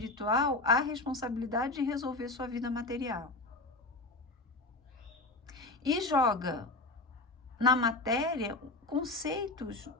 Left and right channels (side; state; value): right; quieter; 3.0 dB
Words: a responsabilidade de resolver sua vida material. E joga na matéria conceitos